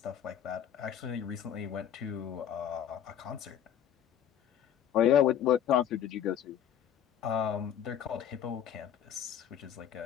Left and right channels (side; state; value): right; quieter; 9.7 dB